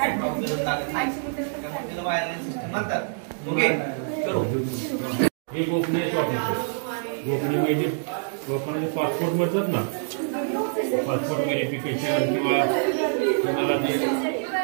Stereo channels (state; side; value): silent; left; digital silence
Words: त्याला वायरलेस सिस्टीम म्हणतात. ओके, चलो. हे गोपनीय गोपनीय म्हणजे लोकांना पासपोर्ट मिळतात ना, पासपोर्ट व्हेरिफिकेशन किंवा कोणाला ते